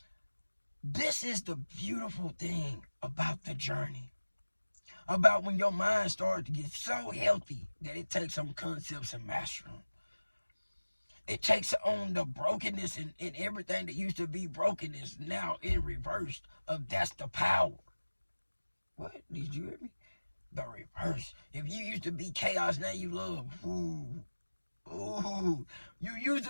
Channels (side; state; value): both; inverted; correlation -1.00